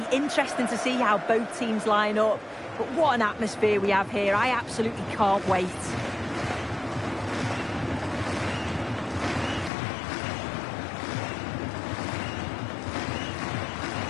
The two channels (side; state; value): right; drops out; at 9.7 s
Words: interesting to see how both teams line up. But what an atmosphere we have here. I absolutely can't wait.